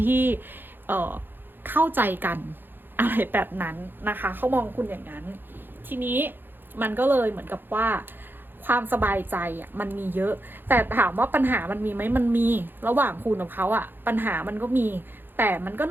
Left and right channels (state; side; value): late; left; 0.097 ms